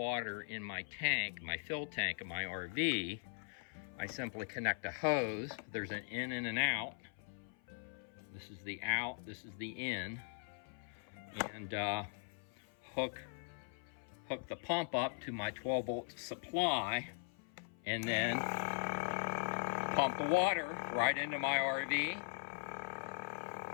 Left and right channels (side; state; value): right; silent; 51 dB below the other